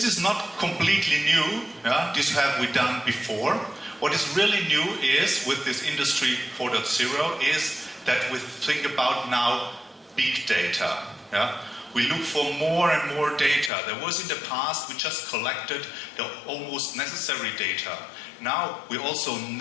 is not completely new. Yeah? This have we done before. What is really new is, with this Industry 4.0, is that we think about now big data. Yeah? We look for more and more data. There was in the past, we just collected the almost necessary data. Now we also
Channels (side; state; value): right; drops out; at 13.7 s